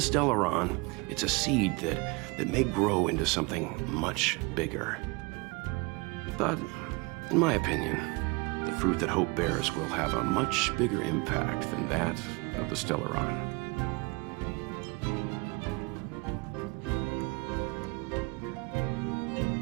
it's a seed that may grow into something much bigger. But, in my opinion, the fruit that hope bears will have a much bigger impact than that of the Stellaron.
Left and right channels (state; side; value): quieter; left; 27.4 dB